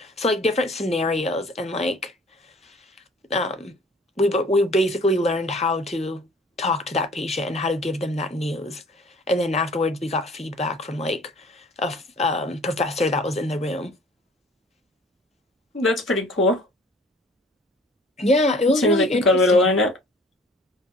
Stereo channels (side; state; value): both; normal; correlation 0.51